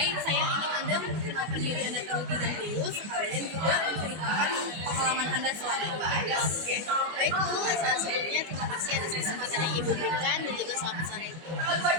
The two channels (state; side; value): late; left; 25 ms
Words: saya ingin Anda memperkenalkan diri Anda terlebih dahulu, sekalian juga menceritakan pengalaman Anda selama bertugas. Baik Bu, sebelumnya terima kasih atas kesempatan yang Ibu berikan dan juga selamat sore Ibu.